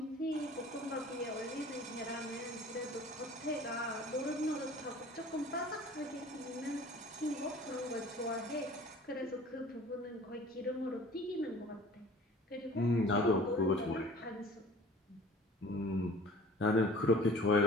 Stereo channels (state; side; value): normal; both; correlation 0.46